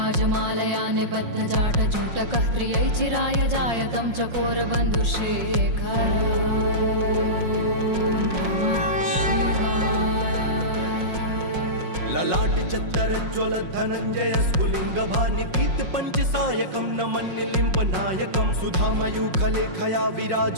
निबद्धजाटजूटकः त्रियै चिराय जायतं चकोरबन्धुशेखर ललाट चत्तरज्ज्वल धनञ्जय स्फुलिङ्गभानि पीत पञ्चसायकं नमन्निलिम्प नायकं सुधामयूखलेखया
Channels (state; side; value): late; left; 5.5 ms